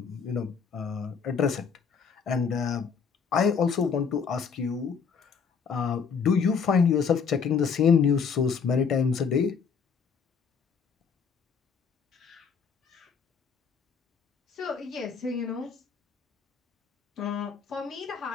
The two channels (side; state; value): right; quieter; 6.0 dB